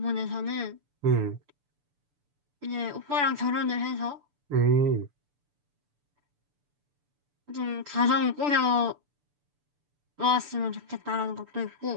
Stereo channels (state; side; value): late; left; 6.9 ms